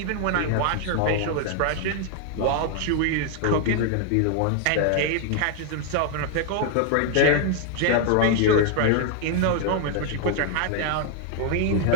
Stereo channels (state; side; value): different; both; correlation 0.00